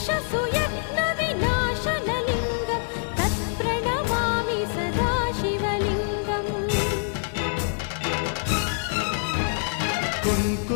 तत्प्रणमामि सदा शिवलिङ्गम्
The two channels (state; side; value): silent; right; digital silence